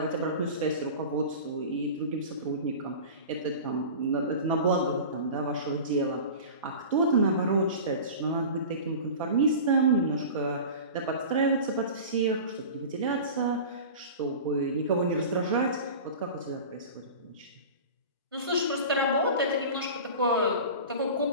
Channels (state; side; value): inverted; both; correlation -0.35